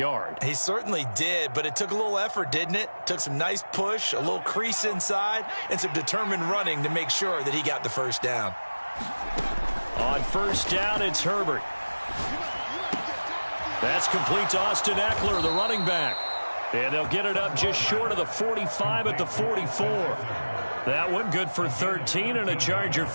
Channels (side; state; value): both; inverted; correlation -1.00